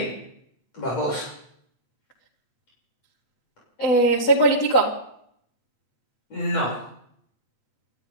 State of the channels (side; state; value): right; late; 7.9 ms